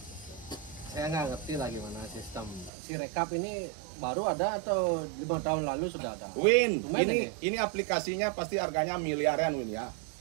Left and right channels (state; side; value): drops out; left; at 2.7 s